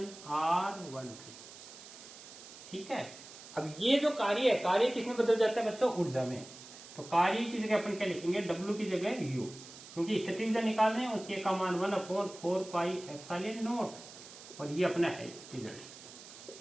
R13। ठीक है, अब ये जो कार्य है, कार्य किसमें बदल जाता है बच्चों, ऊर्जा में। तो कार्य की जगह अपन क्या लिखेंगे, W की जगह U, क्योंकि स्थिति ऊर्जा निकाल रहे हैं और के का मान 1/4πε0 और ये अपना है result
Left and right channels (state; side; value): noise; right; hiss, 16 dB below the sound